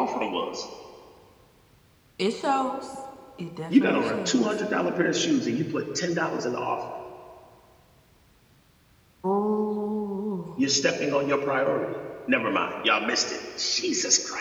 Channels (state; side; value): identical; both; correlation 1.00